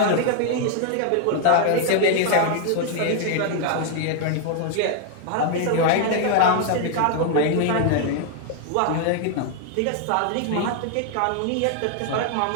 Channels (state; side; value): different; both; correlation 0.00